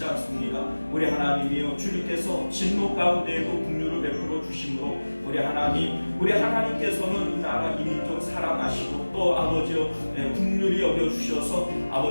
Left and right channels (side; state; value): both; inverted; correlation -1.00